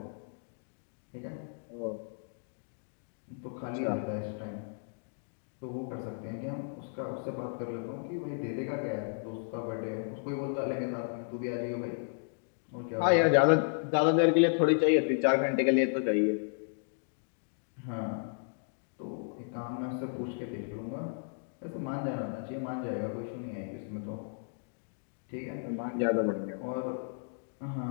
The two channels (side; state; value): right; silent; digital silence